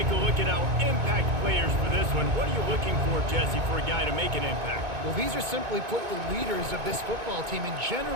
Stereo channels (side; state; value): left; late; 2.2 ms